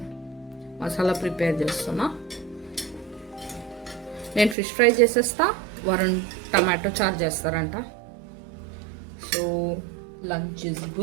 మసాలా ప్రిపేర్ చేస్తున్నా. నేను ఫిష్ ఫ్రై చేసేస్తా, వరుణ్ టమాటో చారు చేస్తారంట. So lunch is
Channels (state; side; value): drops out; left; at 4.5 s